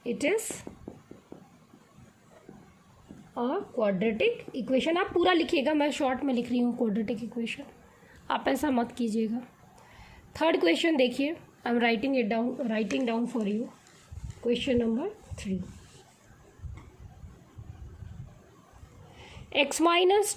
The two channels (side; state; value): both; identical; correlation 1.00